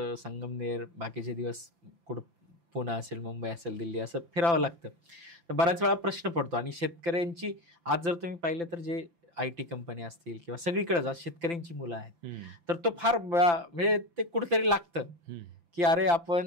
संगमनेर, बाकीचे दिवस कुठं पुणे असेल, मुंबई असेल, दिल्ली, असं फिरावं लागतं. तर बऱ्याच वेळा प्रश्न पडतो. आणि शेतकऱ्यांची आज जर तुम्ही पाहिलं तर जे IT कंपनी असतील किंवा सगळीकडेच आज शेतकऱ्यांची मुलं आहेत, तर तो फार म्हणजे ते कुठेतरी लागतं की अरे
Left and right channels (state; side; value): late; left; 5.9 ms